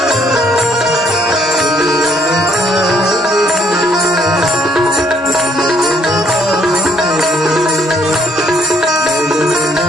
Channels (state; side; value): normal; both; correlation 0.67